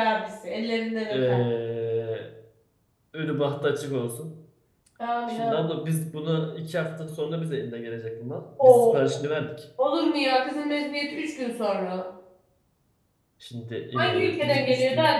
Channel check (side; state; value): both; identical; correlation 1.00